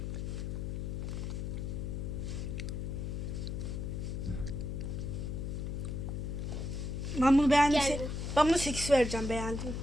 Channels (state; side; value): noise; left; hum, 3 dB below the sound